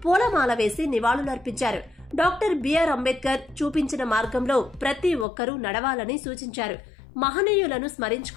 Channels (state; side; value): drops out; right; at 5.2 s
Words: పూలమాల వేసి నివాళులర్పించారు. డాక్టర్ బిఆర్ అంబేద్కర్ చూపించిన మార్గంలో ప్రతి ఒక్కరూ నడవాలని సూచించారు. మహనీయులను